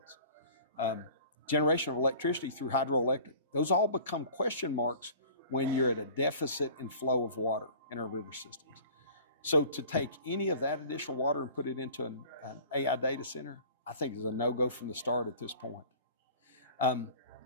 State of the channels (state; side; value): inverted; both; correlation -0.45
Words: generation of electricity through hydroelectric. Those all become question marks when you're at a deficit in flow of water in our river systems. So to take any of that additional water and put it into an AI data center, I think is a no-go from the start at this point.